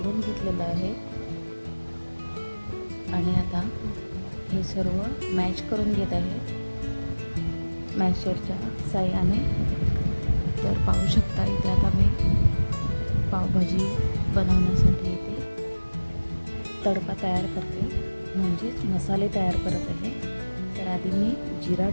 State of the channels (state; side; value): inverted; both; correlation -1.00